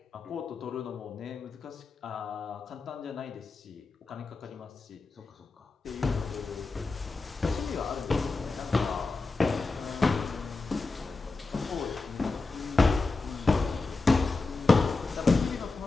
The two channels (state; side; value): quieter; right; 3.7 dB